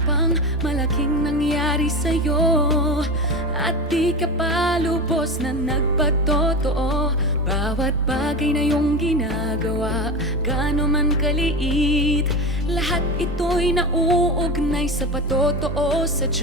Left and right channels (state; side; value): normal; both; correlation 0.24